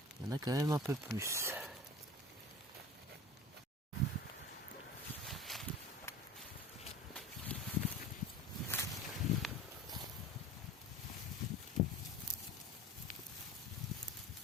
il y en a quand même un peu plus.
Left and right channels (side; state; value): both; normal; correlation 0.38